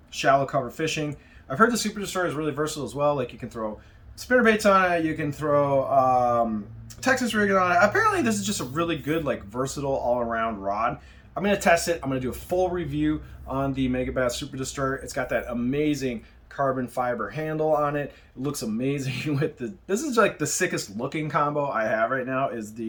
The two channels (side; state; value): both; identical; correlation 1.00